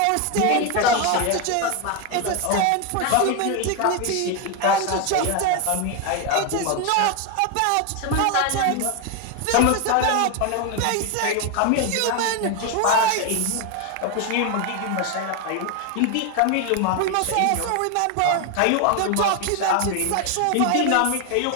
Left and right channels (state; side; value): different; both; correlation 0.01